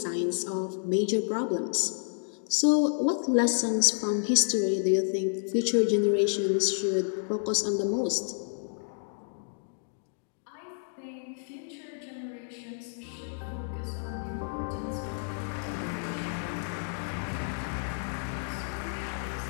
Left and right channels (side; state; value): right; silent; digital silence